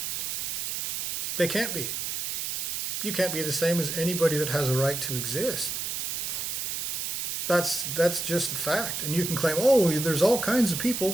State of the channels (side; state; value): right; noise; hiss, 2 dB below the sound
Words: They can't be. You can't be the same as anybody that has a right to exist. That's just a fact. And you can claim, oh, there's all kinds of